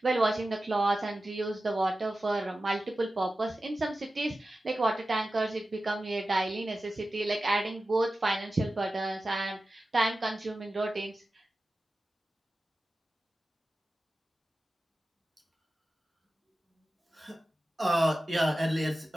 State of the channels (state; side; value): normal; both; correlation 0.95